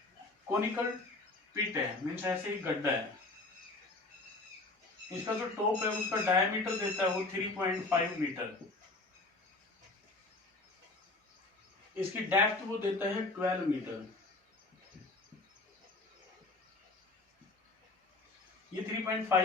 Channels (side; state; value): right; quieter; 3.2 dB